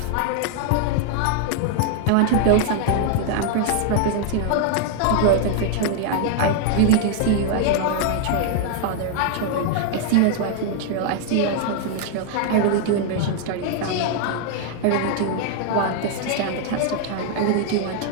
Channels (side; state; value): both; different; correlation 0.00